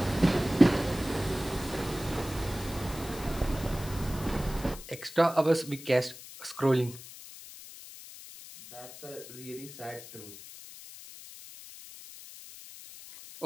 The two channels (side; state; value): left; noise; hiss, 15 dB below the sound